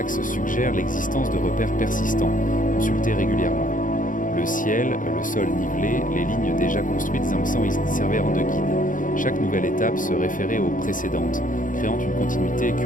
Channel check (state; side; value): late; right; 0.38 ms